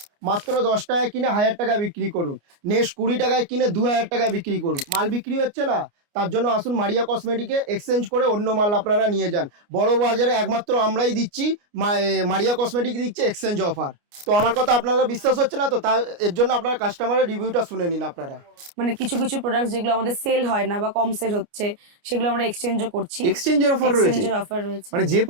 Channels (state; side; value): late; left; 29 ms